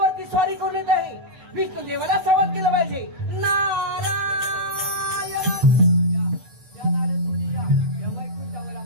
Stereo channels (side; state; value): left; late; 8.5 ms